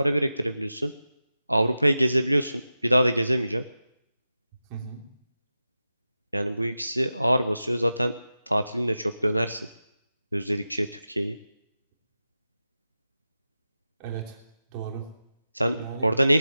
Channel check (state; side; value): inverted; both; correlation -0.93